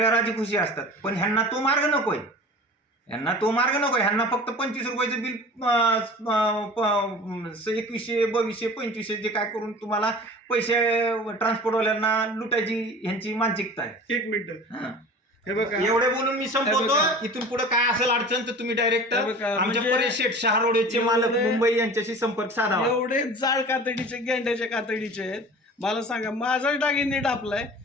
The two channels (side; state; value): both; normal; correlation 0.40